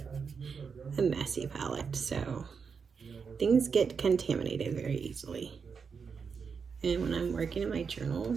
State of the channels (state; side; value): quieter; left; 5.8 dB